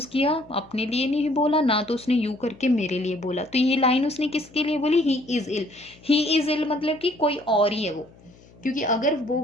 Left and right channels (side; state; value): left; noise; hum, 26 dB below the sound